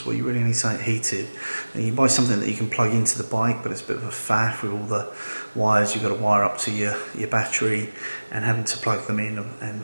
where you really need something heated, and you buy something that you can plug into the bike, but it's a bit of a faff with all the wires you've got to wire up to your battery and having to plug them in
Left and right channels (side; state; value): both; inverted; correlation -1.00